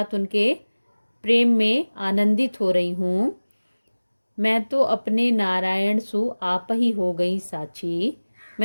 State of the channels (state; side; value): inverted; both; correlation -1.00